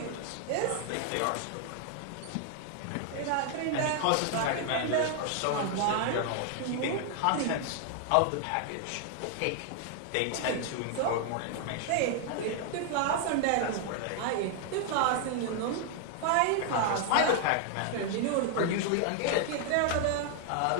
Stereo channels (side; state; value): both; different; correlation 0.00